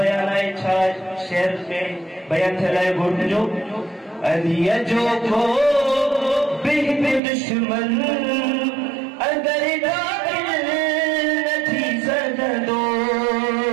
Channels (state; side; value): drops out; left; at 7.2 s